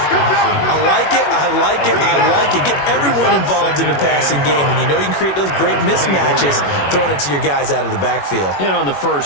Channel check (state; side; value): late; right; 21 ms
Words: like it, I like it, I like it. Get everyone involved in the passing game, and you know you can create those great mismatches throwing it to your guys out of the backfield. And on the